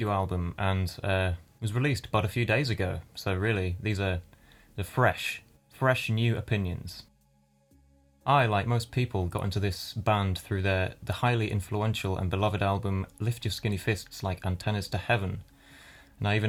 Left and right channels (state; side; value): identical; both; correlation 1.00